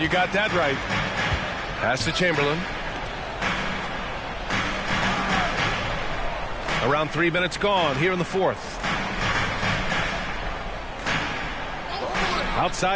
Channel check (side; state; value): both; identical; correlation 1.00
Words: you got that right. Pass to Chamberlain. Around 3 minutes gone here in the fourth.